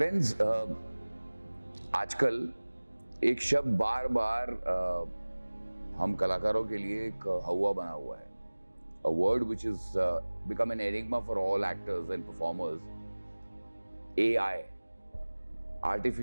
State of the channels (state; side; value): inverted; both; correlation -1.00